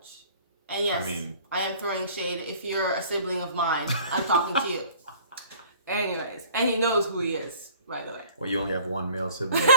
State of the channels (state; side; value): inverted; both; correlation -0.52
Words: And yes, I am throwing shade. If you're a sibling of mine, I'm talking to you. Anyways, and he knows who he is, by the way. Well, you only have one male sibling.